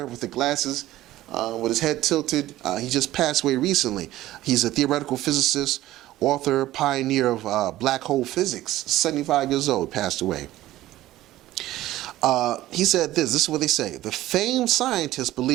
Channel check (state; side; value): quieter; left; 15.4 dB